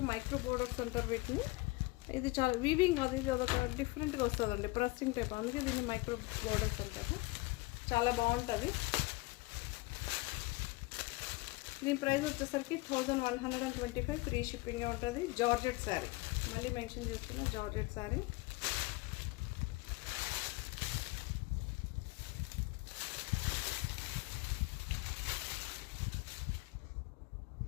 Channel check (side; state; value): right; quieter; 22.5 dB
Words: మైక్రో బోర్డర్స్ అంటారు వీటిని. ఇది చాలా వీవింగ్ అది, ఇది అదొక డిఫరెంట్గా వస్తుందండి, ప్రెస్సింగ్ టైప్, అందుకే దీన్ని మైక్రో బోర్డర్స్ అంటారు. చాలా బాగుంటుంది. దీని ప్రైస్ వచ్చేసరికి 1125 ఫ్రీ షిప్పింగ్ ఉంటుంది. జార్జెట్ శారీ, మళ్ళీ మెన్షన్ చేస్తున్నా, georgette sari.